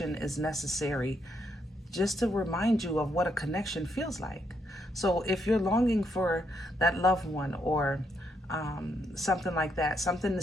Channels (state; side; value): normal; both; correlation 0.77